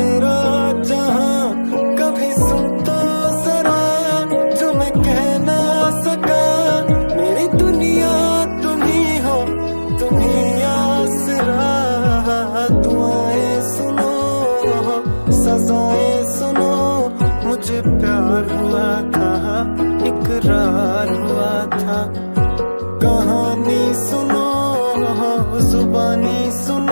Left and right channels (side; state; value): both; inverted; correlation -1.00